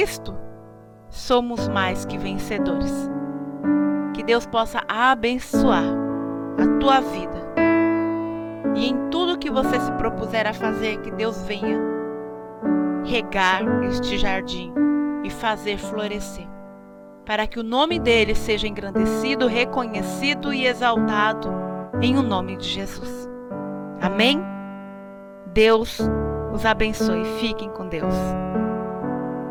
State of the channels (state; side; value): identical; both; correlation 1.00